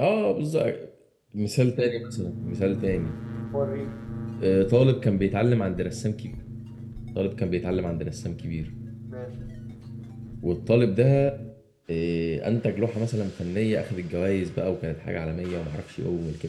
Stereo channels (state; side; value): identical; both; correlation 1.00